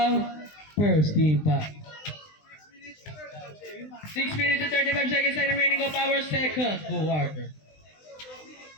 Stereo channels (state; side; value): late; right; 20 ms